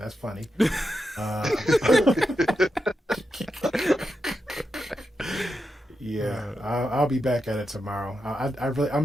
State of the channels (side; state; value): both; normal; correlation 0.87